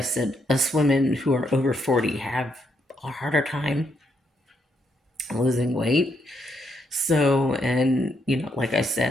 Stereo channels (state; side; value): normal; both; correlation 0.76